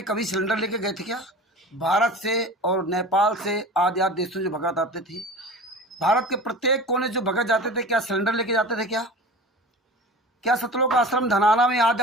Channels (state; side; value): normal; both; correlation 0.36